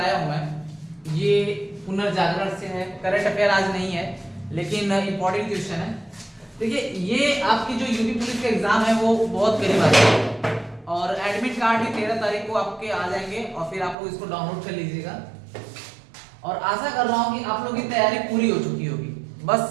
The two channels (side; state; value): left; drops out; at 14.0 s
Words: हूं मैं ये पुनर्जागरण से है। करंट अफेयर आज नहीं है लेकिन इंपॉर्टेंट क्वेश्चन है। देखिए ये आपकी जो यूपी पुलिस का एग्जाम है वो बहुत करीब आ है और एडमिट कार्ड भी 13 तारीख को आपके आ जाएंगे और फिर आप लोग इसको डाउनलोड कर लीजिएगा। और आशा कर रहा हूं कि आप लोगों की तैयारी पूरी हो चुकी होगी।